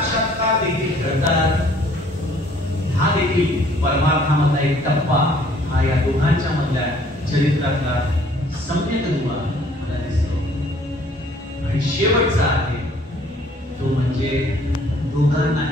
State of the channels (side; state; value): both; normal; correlation 0.59